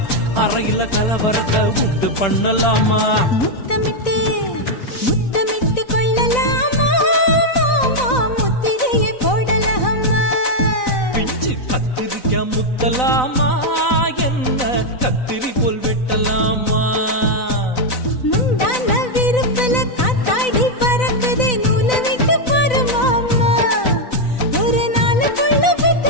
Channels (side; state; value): right; late; 4.0 ms